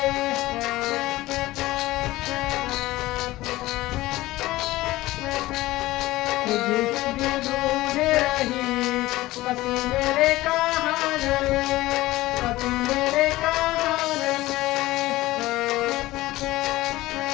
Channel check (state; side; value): quieter; right; 17.8 dB